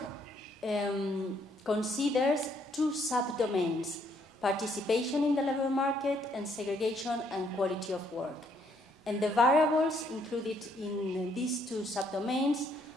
considers 2 subdomains: participation in the labor market and segregation and quality of work. And the variables included in these 2 subdomains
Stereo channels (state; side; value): normal; both; correlation 0.69